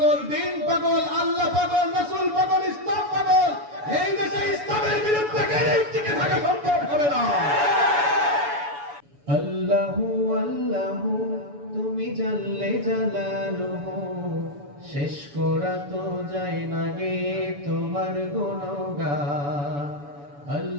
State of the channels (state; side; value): late; left; 7.0 ms